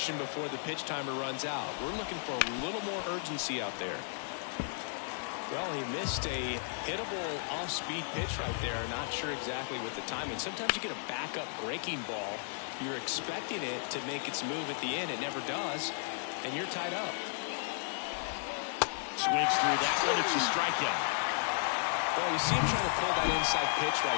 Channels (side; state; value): right; silent; 55 dB below the other